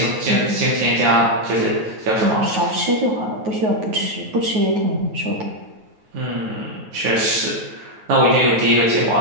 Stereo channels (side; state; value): left; late; 9.3 ms